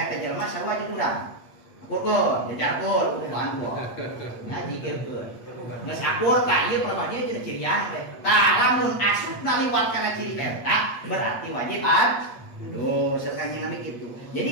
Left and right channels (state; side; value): late; right; 8.4 ms